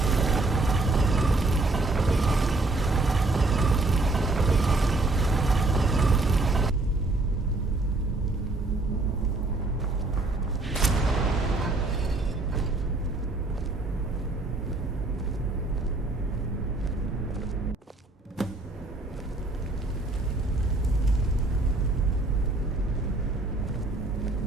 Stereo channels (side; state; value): left; quieter; 3.1 dB